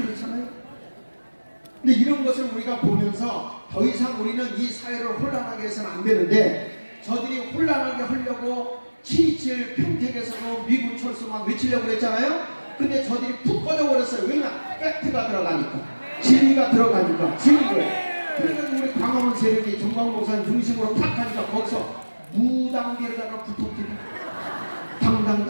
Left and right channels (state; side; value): inverted; both; correlation -1.00